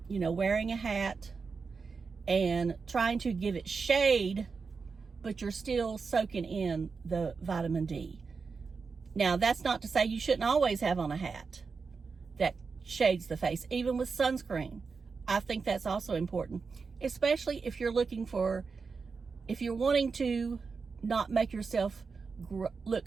a hat and trying to give it shade, but you're still soaking in the vitamin D. Now, that's not to say you shouldn't always have on a hat that shades the face, even with sunscreen. I think that's also important, especially if you're looking for if you're wanting to not make yourself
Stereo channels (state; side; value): quieter; left; 4.9 dB